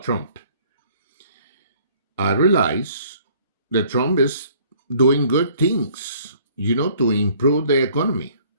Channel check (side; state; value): both; inverted; correlation -0.58